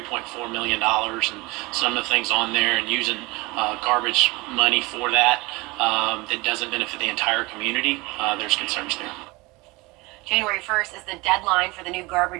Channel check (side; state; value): left; quieter; 23.5 dB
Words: million and some of the things on there, and using garbage money for that, that doesn't benefit the entire community, there's concerns there. January 1st is the deadline for the new